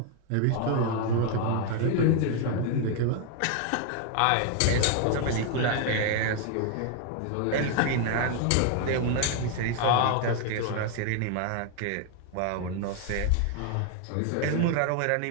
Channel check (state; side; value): different; both; correlation 0.01